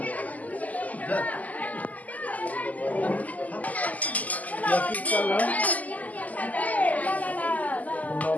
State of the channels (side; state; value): right; late; 0.077 ms